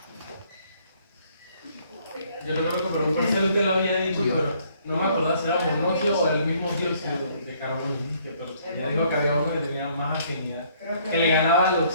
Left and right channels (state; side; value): inverted; both; correlation -0.64